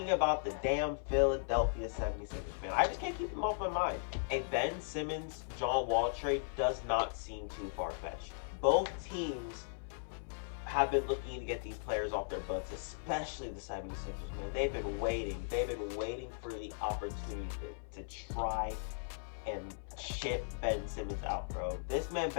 about the damn Philadelphia 76ers, man. I just can't keep them off my mind. A Ben Simmons, John Wall trade does not seem too far-fetched. Both teams have been looking to get these players off their books, especially the 76ers, man. They've been waiting. They've been waiting for the opportunity to try and ship Ben Simmons out, bro. This man,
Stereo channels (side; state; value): right; silent; 53 dB below the other